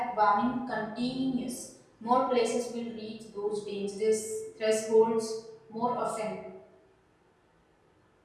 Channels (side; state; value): both; identical; correlation 1.00